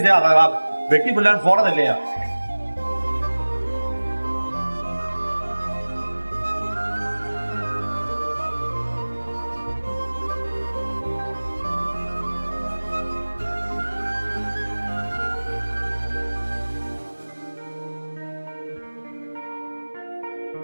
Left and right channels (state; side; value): inverted; both; correlation -1.00